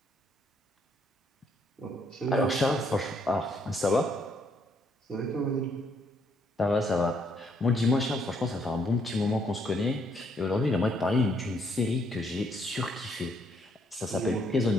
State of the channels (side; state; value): both; normal; correlation 0.71